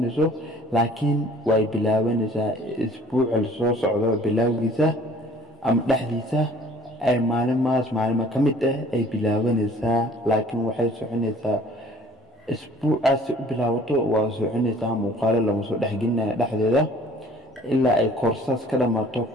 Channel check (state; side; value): normal; both; correlation 0.53